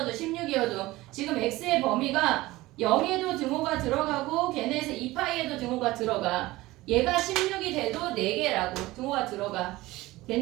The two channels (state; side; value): quieter; left; 18.8 dB